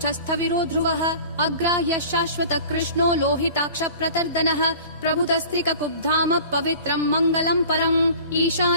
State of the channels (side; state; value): both; inverted; correlation -0.43